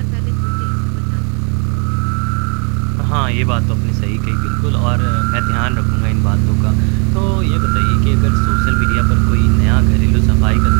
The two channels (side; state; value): left; quieter; 35.3 dB